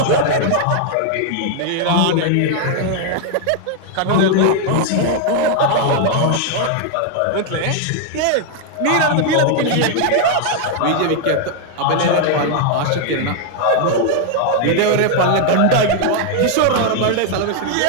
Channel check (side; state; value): both; different; correlation 0.00